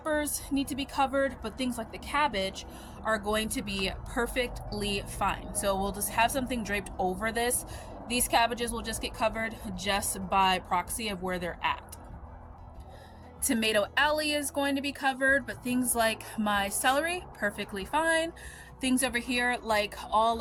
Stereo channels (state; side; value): identical; both; correlation 1.00